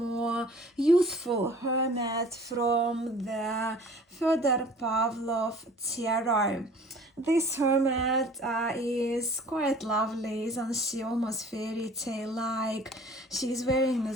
youthful hermit from the Fyodor Pavlov Tarot. This hermit is quite lovely, isn't she? Almost fairy tale like. She's wearing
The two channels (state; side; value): normal; both; correlation 0.48